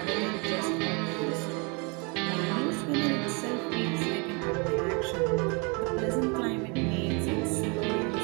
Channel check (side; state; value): left; quieter; 32.0 dB